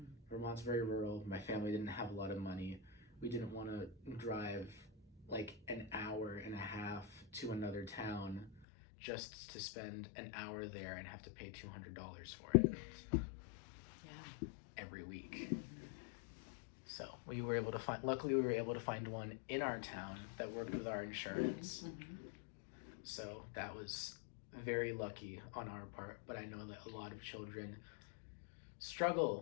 Vermont's very rural. My family didn't have a lot of money. We didn't want to drive like an hour and a half to another town just to spend an hour there and have to pay $200 for it. Yeah. Every week. So luckily we were able to find one in our town that worked with our insurance. Mm-hmm. So that was very lucky on our part, but I know that a lot of children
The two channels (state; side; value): drops out; right; at 8.7 s